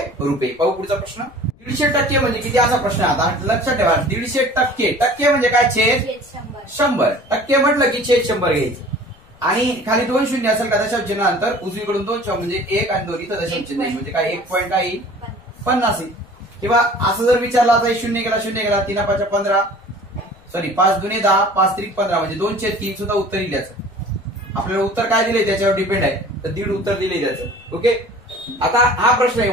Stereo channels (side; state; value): left; noise; rumble, 27 dB below the sound